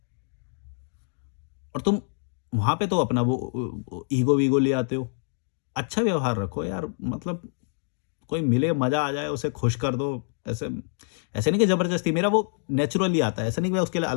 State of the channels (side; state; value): right; silent; digital silence